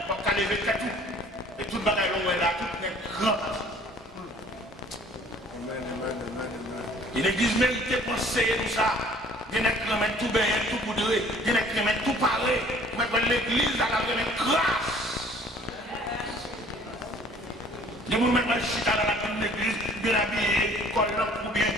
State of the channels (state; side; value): normal; both; correlation 0.54